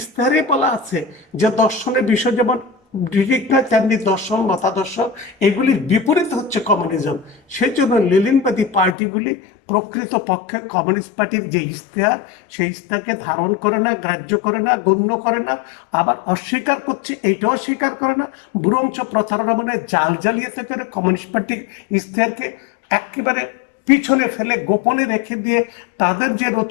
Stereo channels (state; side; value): drops out; right; at 9.0 s